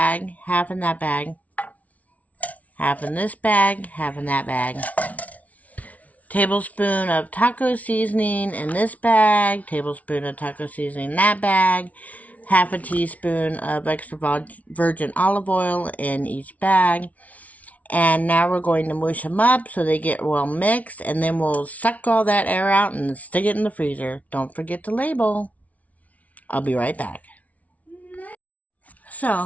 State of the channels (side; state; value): right; late; 0.069 ms